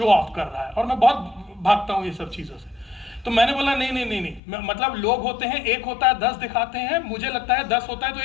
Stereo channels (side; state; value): right; drops out; at 4.4 s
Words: ऑफ कर रहा है, और मैं बहुत भागता हूँ ये सब चीज़ों से। तो मैंने बोला नहीं नहीं नहीं नहीं, मतलब लोग होते हैं, एक होता है 10 दिखाते हैं, मुझे लगता है 10 होता है तो